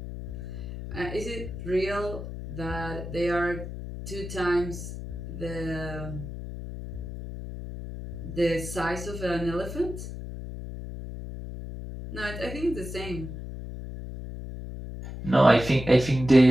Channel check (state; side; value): noise; left; hum, 8 dB below the sound